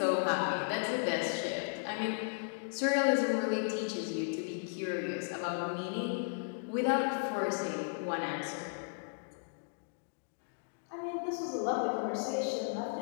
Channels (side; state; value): right; silent; digital silence